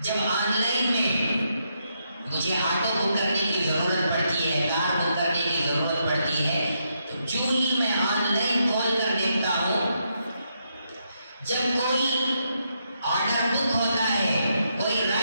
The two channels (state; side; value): inverted; both; correlation -0.80